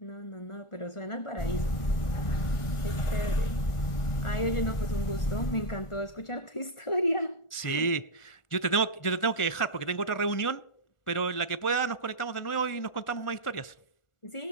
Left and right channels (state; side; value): late; right; 1.4 ms